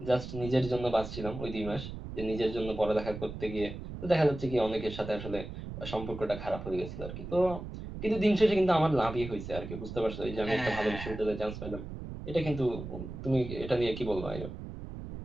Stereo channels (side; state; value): right; noise; rumble, 9 dB below the sound